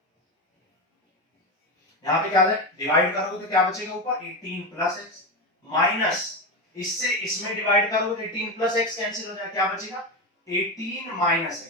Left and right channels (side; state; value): both; normal; correlation 0.16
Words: यहाँ पे क्या है, डिवाइड करोगे तो क्या बचेगा ऊपर, 18 + x माइनस, इससे इसमें डिवाइड करोगे तो 18 + x कैंसिल हो जाएगा, क्या बचेगा, 18 -